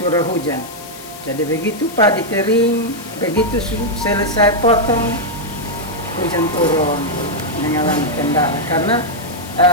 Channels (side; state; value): left; noise; hiss, 16 dB below the sound